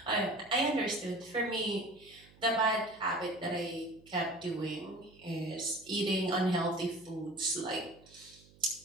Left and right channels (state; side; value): noise; right; hum, 25 dB below the sound